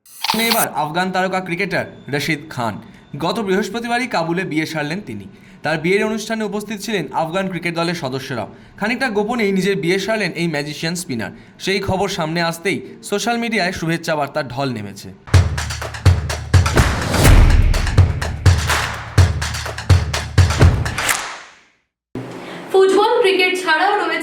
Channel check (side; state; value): both; identical; correlation 1.00